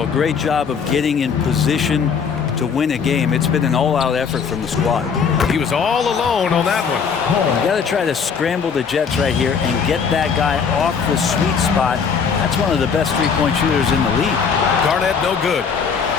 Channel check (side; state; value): right; quieter; 6.2 dB